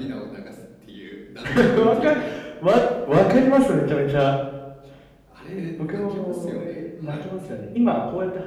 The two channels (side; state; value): both; identical; correlation 1.00